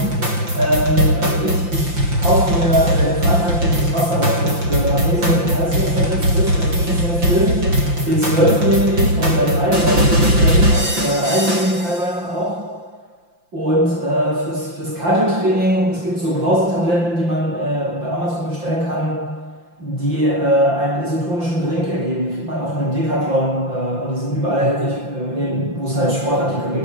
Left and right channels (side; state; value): left; late; 5.8 ms